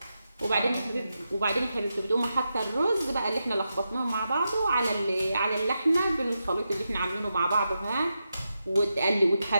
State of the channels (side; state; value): both; inverted; correlation -0.88